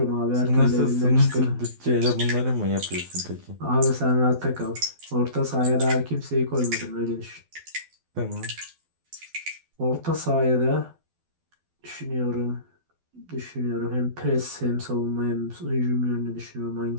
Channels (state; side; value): late; left; 12 ms